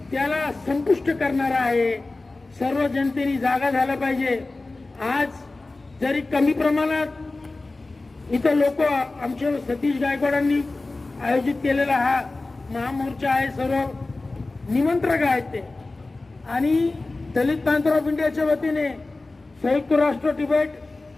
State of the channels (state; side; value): quieter; right; 3.2 dB